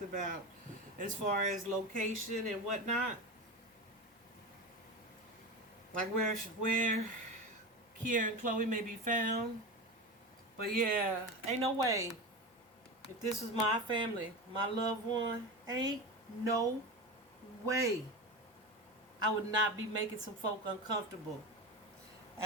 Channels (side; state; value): both; normal; correlation 0.24